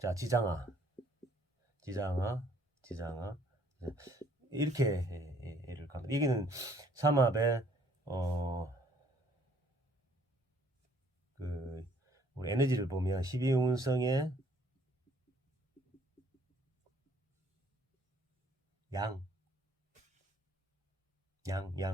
지장아, 이렇게 예를 갑니다. 여기는 삼합의 그 우리 에너지를 보면 12운성의 양간,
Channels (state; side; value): normal; both; correlation 0.61